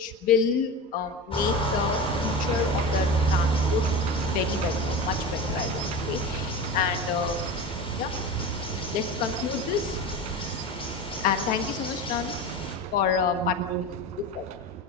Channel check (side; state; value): both; normal; correlation 0.27